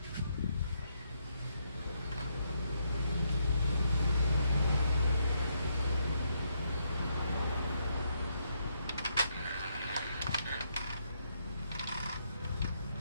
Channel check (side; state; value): both; inverted; correlation -0.77